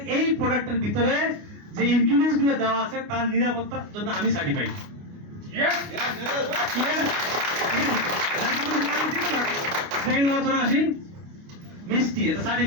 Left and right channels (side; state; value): left; late; 29 ms